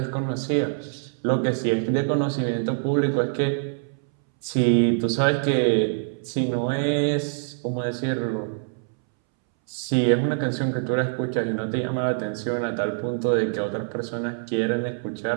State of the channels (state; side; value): silent; left; 62 dB below the other